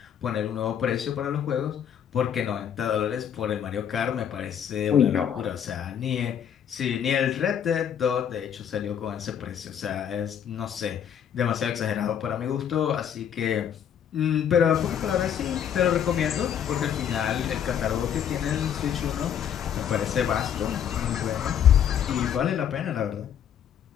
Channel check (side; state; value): right; quieter; 8.9 dB